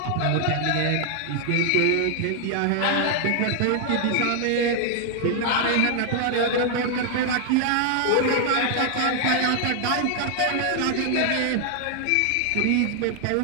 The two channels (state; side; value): different; both; correlation 0.00